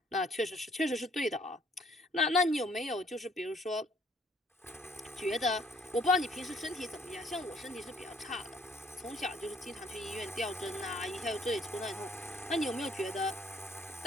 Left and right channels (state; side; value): normal; both; correlation 0.62